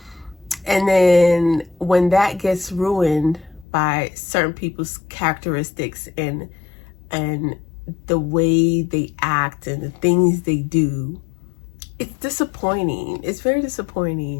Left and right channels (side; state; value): right; drops out; at 3.7 s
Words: And then when that gets ruined by certain people's characteristics and the way they act and the things they do, it's disappointing. It's very